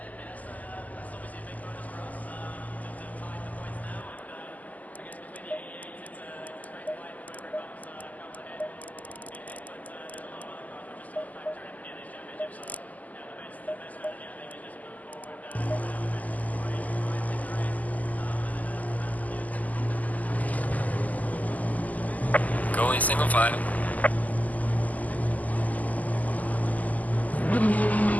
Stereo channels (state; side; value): late; right; 0.078 ms